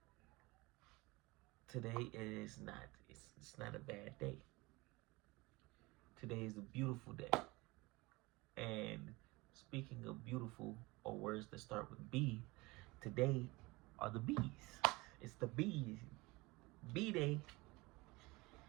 today is not. It's not a bad day. Today is a beautiful day. And speaking of beautiful or words that start with B, today are the B's. It's the B's. B Day.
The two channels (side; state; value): left; quieter; 23.0 dB